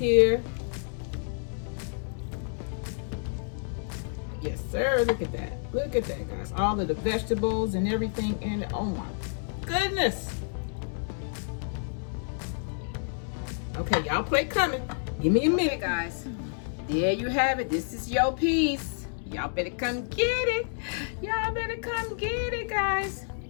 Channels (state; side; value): silent; right; 58 dB below the other